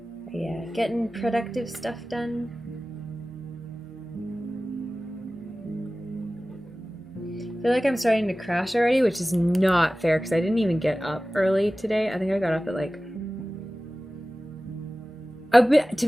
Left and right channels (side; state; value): both; normal; correlation 0.96